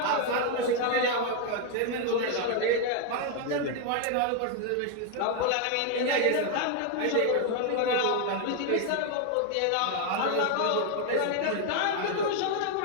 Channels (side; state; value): both; different; correlation 0.01